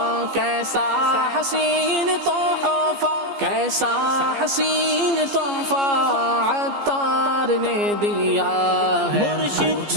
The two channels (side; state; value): left; late; 15 ms